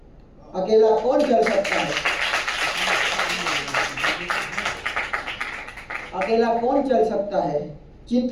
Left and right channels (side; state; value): both; identical; correlation 1.00